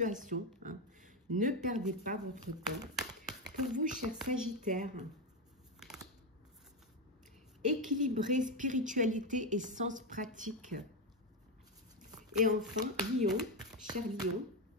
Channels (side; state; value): both; normal; correlation 0.09